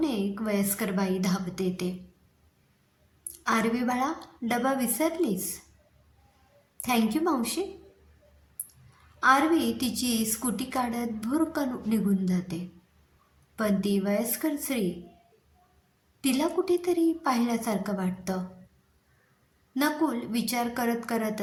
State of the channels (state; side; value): identical; both; correlation 1.00